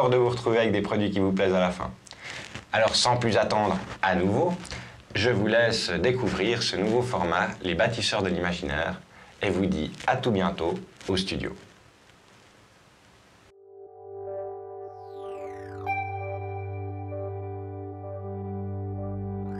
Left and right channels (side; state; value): both; identical; correlation 1.00